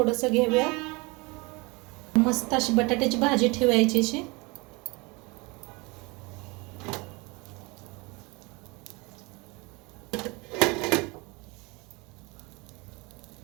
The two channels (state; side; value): quieter; left; 26.3 dB